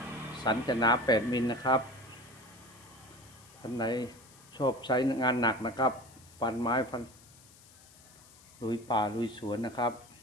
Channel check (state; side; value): noise; left; hiss, 24 dB below the sound